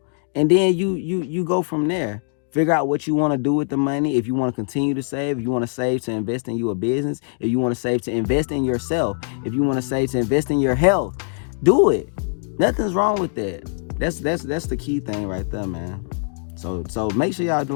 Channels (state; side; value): silent; right; digital silence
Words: and then you go from there. Figure out what you want to do with the money. If you want to continue to save, if you want to save to invest in your business, if you want to save to invest in yourself, if you want to save to invest in your health, do it. Nothing's wrong with that. That's the key thing right there, man. So make sure y'all